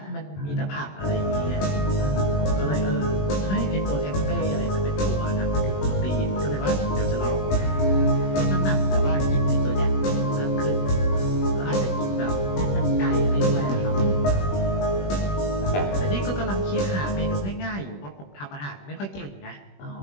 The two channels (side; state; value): right; late; 21 ms